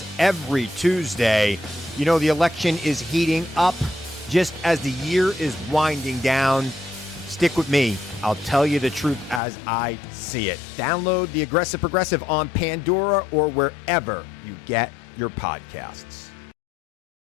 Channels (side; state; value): right; drops out; at 9.4 s